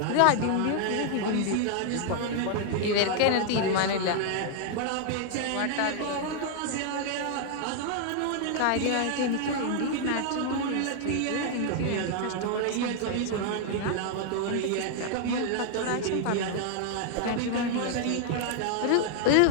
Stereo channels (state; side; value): different; both; correlation 0.00